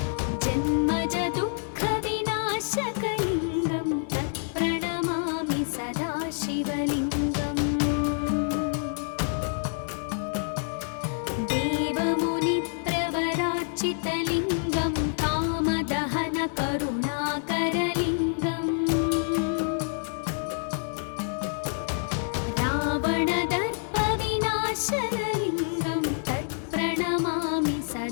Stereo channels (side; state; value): right; silent; 58 dB below the other